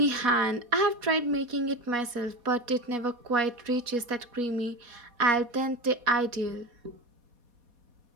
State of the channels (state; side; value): late; left; 4.2 ms